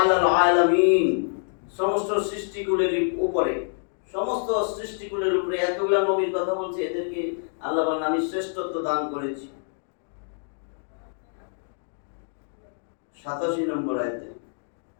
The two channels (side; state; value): right; silent; digital silence